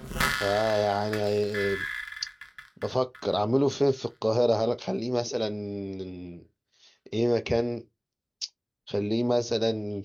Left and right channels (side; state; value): both; identical; correlation 1.00